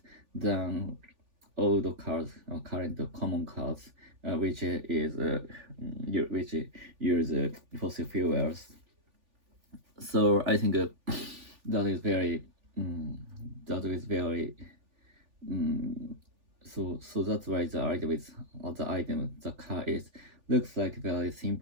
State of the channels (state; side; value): late; left; 3.4 ms